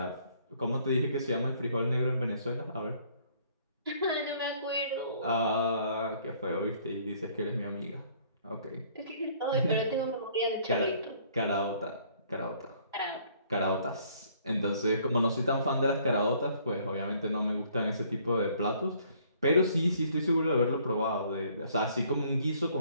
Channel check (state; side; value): inverted; both; correlation -0.61